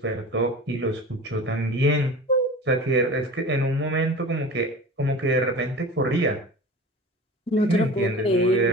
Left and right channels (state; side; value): normal; both; correlation 0.36